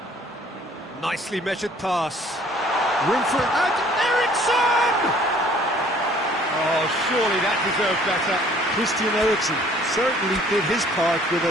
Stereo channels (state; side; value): normal; both; correlation 0.56